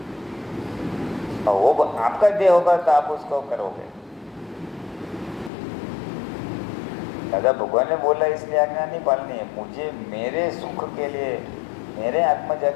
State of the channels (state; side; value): drops out; right; at 5.5 s